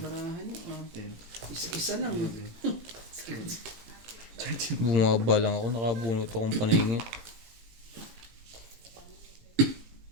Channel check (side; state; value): left; late; 18 ms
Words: niyo. 10, Isa-isa lang. 11, Sige. 13. Bumaba lang ako, nakabunot akong paningit.